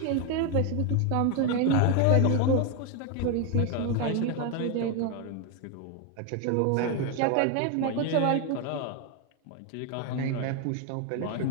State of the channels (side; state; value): both; different; correlation 0.01